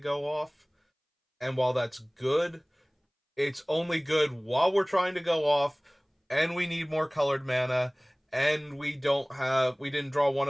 off. And while that's good, it's only good while we're trying to go off, and we need more colored mana, and we didn't draw one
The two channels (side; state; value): both; identical; correlation 1.00